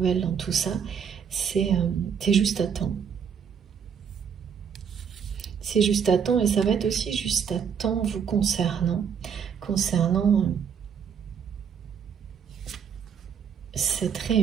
dans tout ça, c'est juste à temps. C'est juste à temps et ça va être aussi juste à temps vous concernant cette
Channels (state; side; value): quieter; left; 7.2 dB